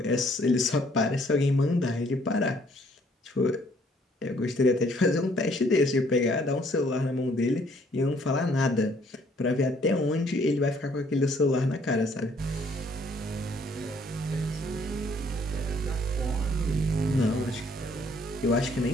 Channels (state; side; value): normal; both; correlation 0.63